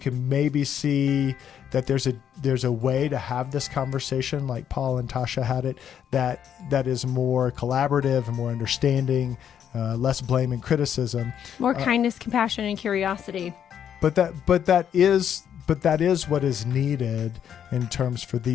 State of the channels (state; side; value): quieter; right; 9.0 dB